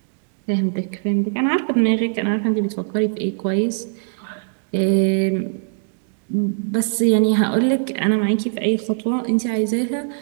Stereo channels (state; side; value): silent; left; digital silence